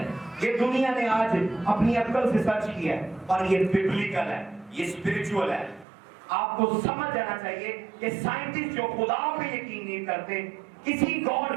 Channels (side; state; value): left; drops out; at 5.9 s